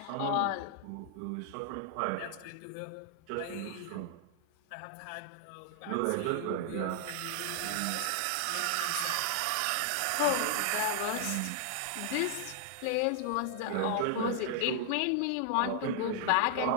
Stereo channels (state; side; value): different; both; correlation -0.01